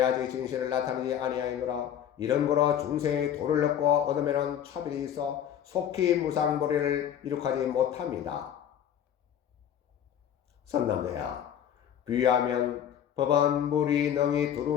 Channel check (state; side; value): quieter; right; 9.5 dB